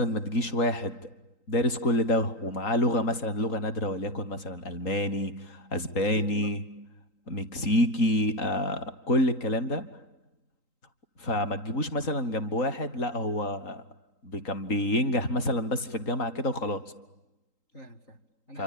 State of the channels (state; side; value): late; right; 3.9 ms